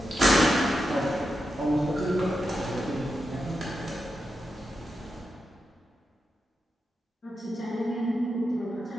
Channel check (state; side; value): normal; both; correlation 0.88